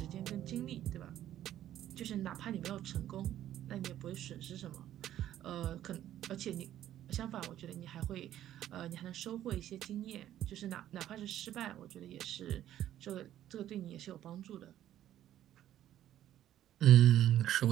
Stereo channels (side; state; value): left; quieter; 12.1 dB